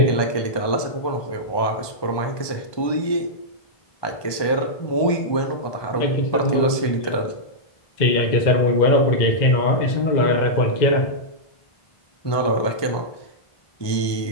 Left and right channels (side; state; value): right; late; 1.2 ms